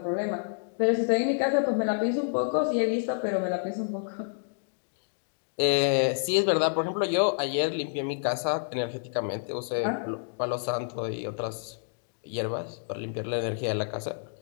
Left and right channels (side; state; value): right; silent; digital silence